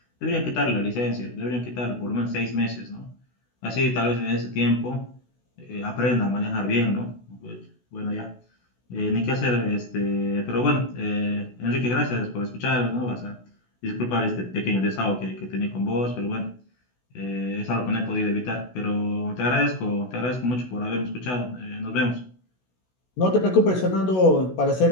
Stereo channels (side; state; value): right; late; 16 ms